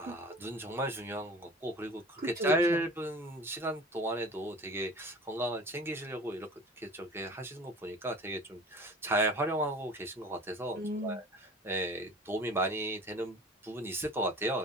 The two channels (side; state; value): both; normal; correlation 0.42